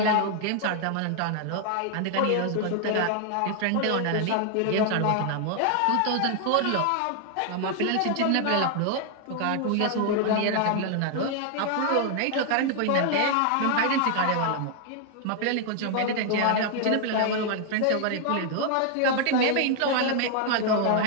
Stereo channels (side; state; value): both; different; correlation 0.00